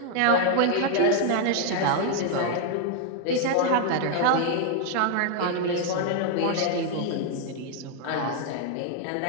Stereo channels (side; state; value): both; different; correlation 0.00